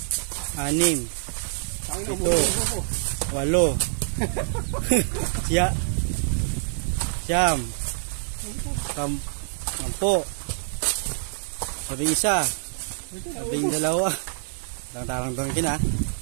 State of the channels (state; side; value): silent; left; digital silence